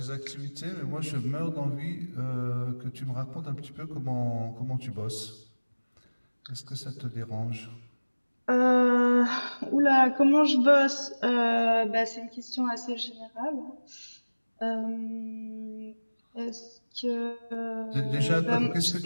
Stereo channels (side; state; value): both; inverted; correlation -1.00